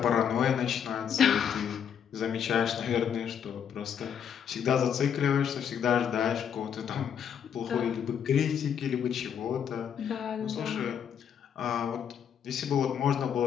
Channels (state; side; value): quieter; right; 8.2 dB